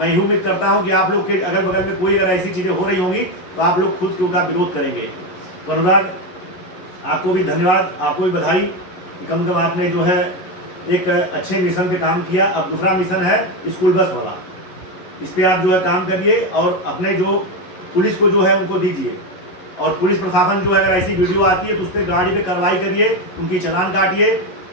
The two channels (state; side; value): late; right; 11 ms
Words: यही उम्मीद करता हूं कि आप लोग के अगल बगल में कोई अगर ऐसी चीज़ें हो रही होंगी तो आप लोग खुद के उनका विरोध करेंगे। तो अनुराग, आपको भी धन्यवाद, आपको भी बधाई कि कम से कम आपने जो है एक अच्छे मिशन पे काम किया। अब दूसरा मिशन है स्कूल बस वाला, इस पर आप जो है काम करिए और अपने जो पुलिस को जो है उनको दीजिए। और पुलिस प्रशासन जो है अगर ऐसी वीडियो आती है तो उस पर गाड़ी पे कार्रवाई करिए, उनकी चालान काटिए,